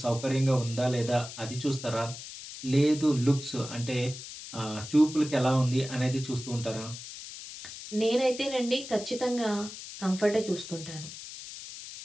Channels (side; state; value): left; noise; hiss, 12 dB below the sound